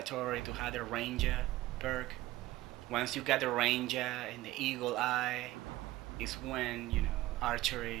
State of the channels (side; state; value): left; quieter; 17.1 dB